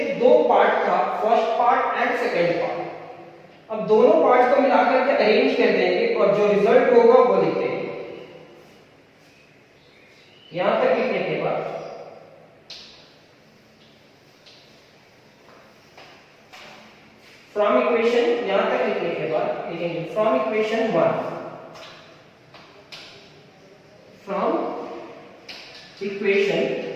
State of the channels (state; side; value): identical; both; correlation 1.00